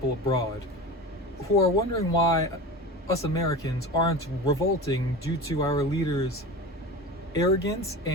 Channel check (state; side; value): normal; both; correlation 0.31